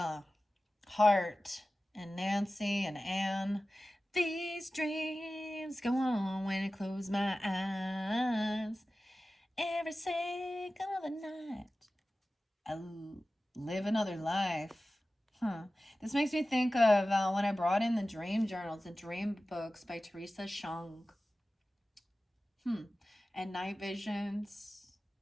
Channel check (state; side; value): normal; both; correlation 0.95